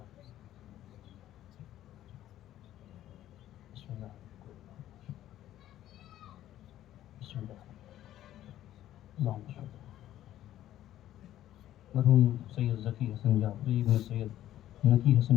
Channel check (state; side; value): quieter; right; 12.8 dB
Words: بسم اللہ بسم اللہ اللہم صل۔ مرحوم سید ذکی حسن جعفری ابن سید نقی حسن،